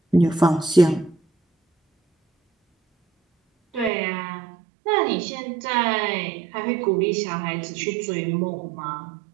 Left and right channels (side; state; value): left; drops out; at 3.9 s